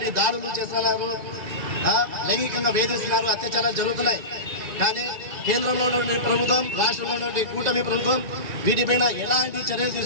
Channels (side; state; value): left; late; 1.9 ms